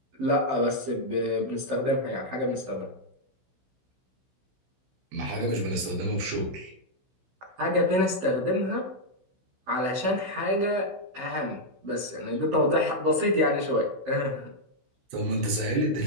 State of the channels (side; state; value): left; late; 16 ms